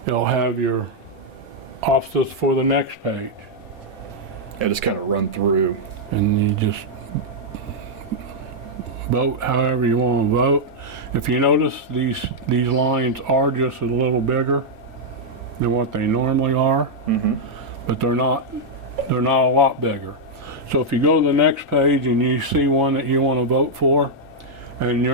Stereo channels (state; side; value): normal; both; correlation -0.04